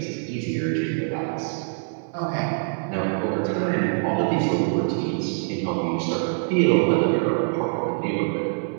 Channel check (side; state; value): left; silent; digital silence